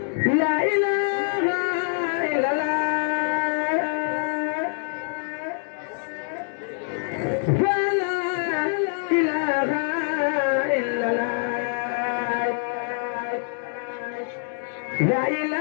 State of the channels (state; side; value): silent; right; digital silence